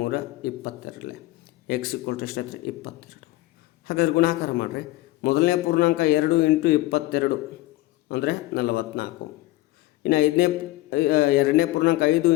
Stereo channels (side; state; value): right; quieter; 17.9 dB